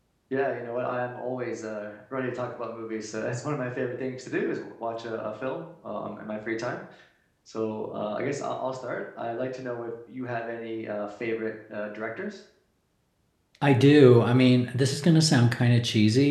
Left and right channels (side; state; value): both; identical; correlation 1.00